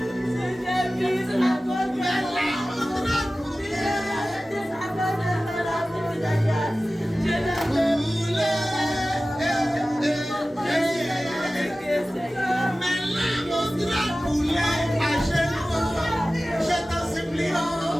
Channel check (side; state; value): both; normal; correlation 0.96